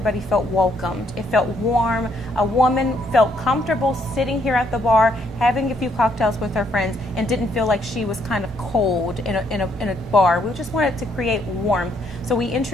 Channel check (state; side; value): normal; both; correlation 0.71